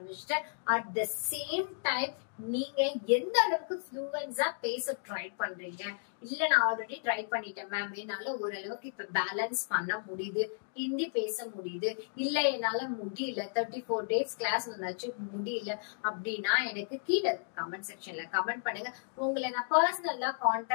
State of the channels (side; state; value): right; silent; digital silence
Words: அட் த சேம் டைம் நீங்க எந்த அளவுக்கு ஃப்ளூவன்ஸா பேச ட்ரை பண்றீங்க. இல்ல நான் ஆல்ரெடி ட்ரை பண்ணிட்டேன் மேம், என்னால ஓரளவுக்கு இப்ப பேலன்ஸ் பண்ண முடியுது, ஹிந்தி பேச முடியுது, இல்ல என்னால முடியல, 34 டேஸ் கிளாஸ் வந்தாச்சு முடியல அப்படின்னா எனக்கு கீழே கமெண்ட் செக்ஷன்ல கமெண்ட் பண்ணுங்க. உங்களை நான் பர்சனலா